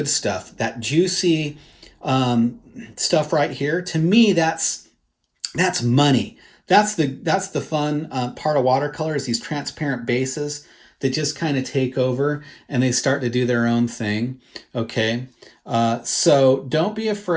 stuff, that juicy stuff right here. To me, that's money. That's the fun part of watercolor, is these transparent bases that just kind of take over and they start to do their own thing. Okay, so don't be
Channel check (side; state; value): both; identical; correlation 1.00